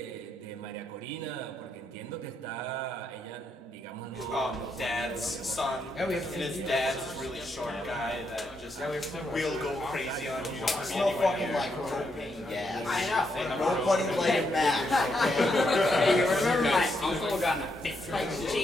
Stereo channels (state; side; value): normal; both; correlation 0.79